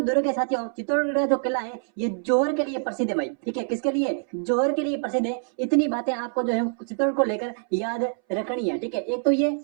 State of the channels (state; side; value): silent; left; 62 dB below the other